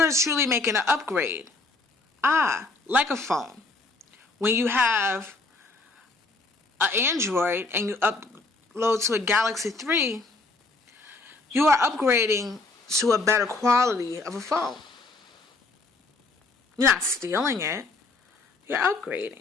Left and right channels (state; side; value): quieter; right; 3.4 dB